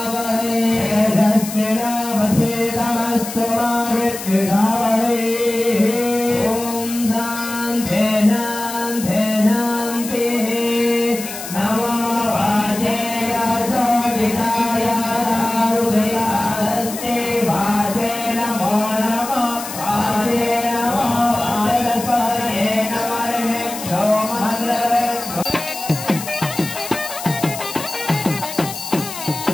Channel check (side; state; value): left; noise; hiss, 9 dB below the sound